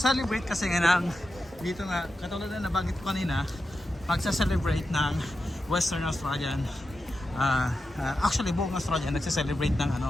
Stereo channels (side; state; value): both; normal; correlation 0.90